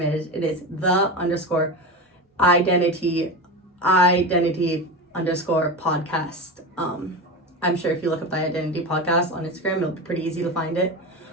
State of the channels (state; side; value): normal; both; correlation 0.23